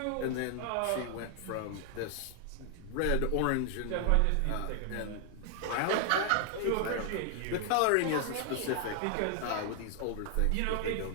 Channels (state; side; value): different; both; correlation 0.00